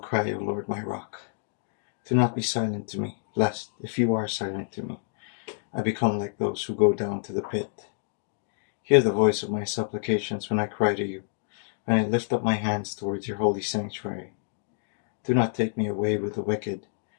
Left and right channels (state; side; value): silent; right; digital silence